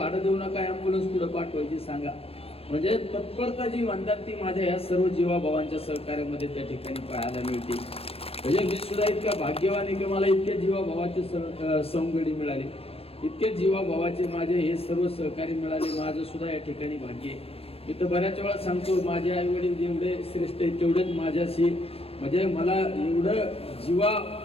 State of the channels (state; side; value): late; right; 0.28 ms